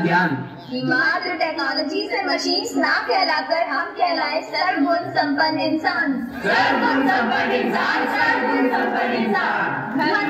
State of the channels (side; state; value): both; identical; correlation 1.00